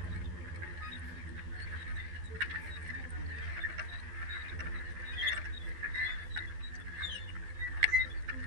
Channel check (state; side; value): late; left; 12 ms